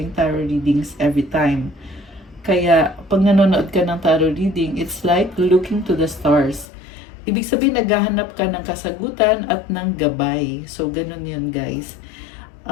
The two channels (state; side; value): drops out; right; at 6.7 s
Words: tarot readings every time. Kaya, pag nanonood ka ng tarot reading, it's like looking to the stars. Ibig sabihin, naghahanap ka ng kasagutan at ng gabay. So, ganun yun, guys.